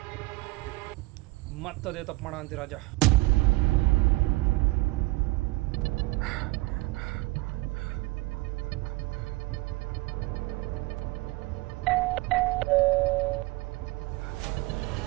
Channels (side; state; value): left; quieter; 22.6 dB